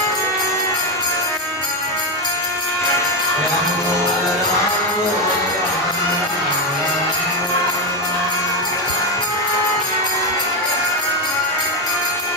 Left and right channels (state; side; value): normal; both; correlation 0.09